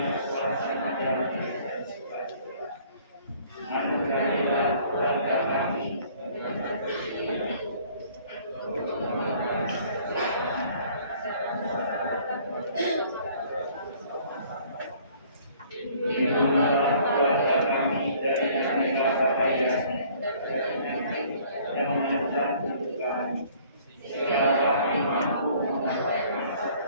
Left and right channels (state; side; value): inverted; both; correlation -0.56